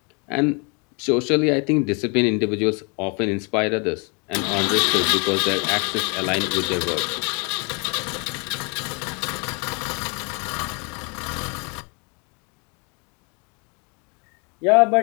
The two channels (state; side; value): quieter; right; 33.7 dB